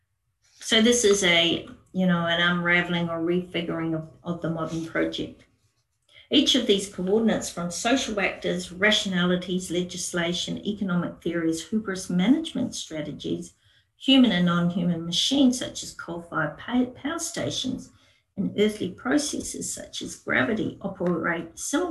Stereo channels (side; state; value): both; identical; correlation 1.00